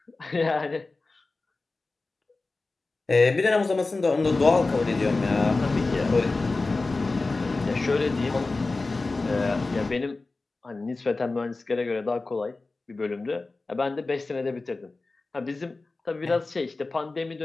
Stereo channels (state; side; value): quieter; right; 3.5 dB